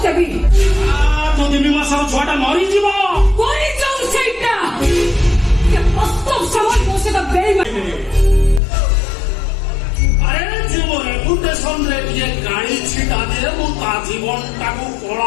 ଦେବି। ଯଦି ମୀମାଂସାର ଛୁଆଟା ମରିଯିବ ମରିଯାଉ ସେଇଟା। ବାସ୍ତବ ସମାଜ ମୋ ସହିତ ବେଇମାନି। ଆରେ ଯୋଉ ରେପୁଟେସନରେ ଟିକେ ଗାଳି ଛିଟା ଦିଏ ମୁଁ ତା ଜୀବନଟାକୁ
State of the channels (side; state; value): right; drops out; at 8.6 s